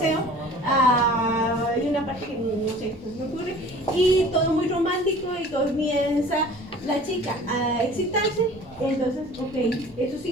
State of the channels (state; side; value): normal; both; correlation 0.45